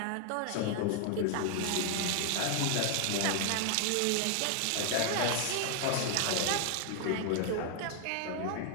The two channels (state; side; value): different; both; correlation 0.00